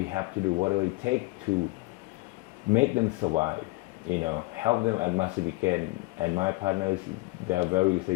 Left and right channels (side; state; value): right; quieter; 22.5 dB